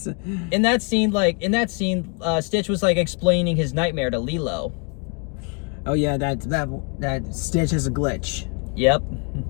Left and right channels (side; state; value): right; quieter; 36.6 dB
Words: In that scene, Stitch was like explaining his nightmare to Lilo. oh yeah, that Stitch has a glitch. Yep.